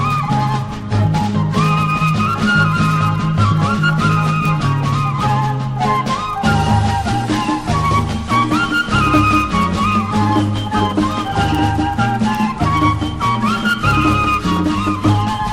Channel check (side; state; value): both; identical; correlation 1.00